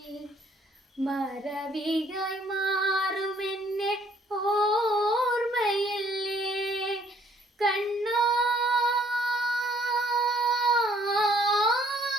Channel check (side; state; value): both; normal; correlation 0.62